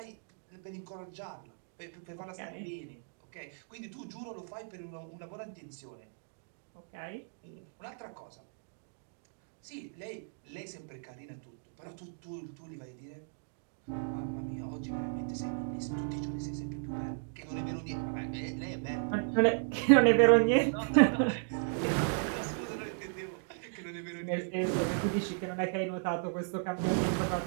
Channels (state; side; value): silent; left; digital silence